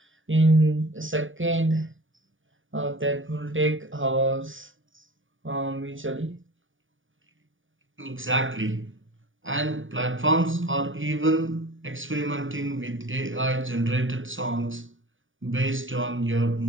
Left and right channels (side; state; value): left; late; 0.57 ms